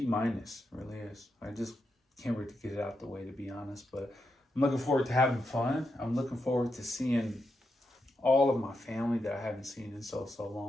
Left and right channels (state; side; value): normal; both; correlation 0.84